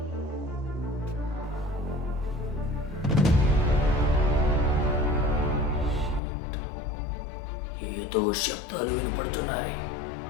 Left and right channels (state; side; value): drops out; right; at 6.2 s